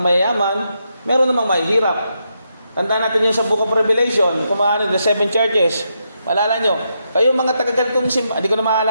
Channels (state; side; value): inverted; both; correlation -0.82